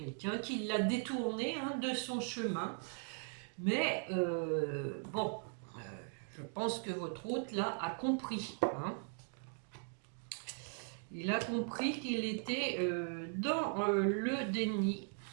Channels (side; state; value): left; silent; 52 dB below the other